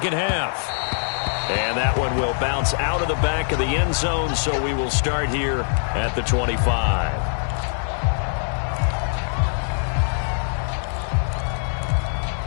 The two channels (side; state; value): right; silent; digital silence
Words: half. And that one will bounce out of the back of the end zone, so we will start here at the 25.